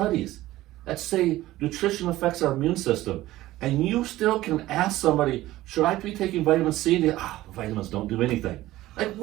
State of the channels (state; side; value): quieter; left; 16.2 dB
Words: that say nutrition affects our immune system. And you still can ask somebody, should I be taking vitamin C? And vitamins don't do anything. Like,